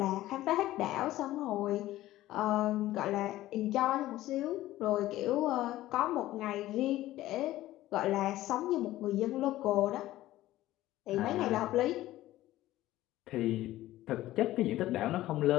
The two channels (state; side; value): quieter; right; 15.5 dB